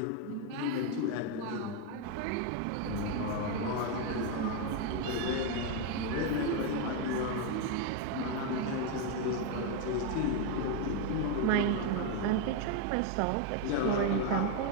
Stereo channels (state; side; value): different; both; correlation 0.01